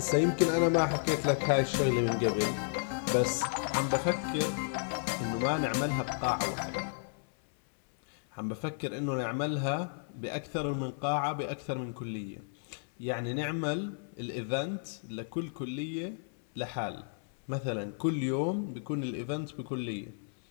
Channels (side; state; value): right; silent; 56 dB below the other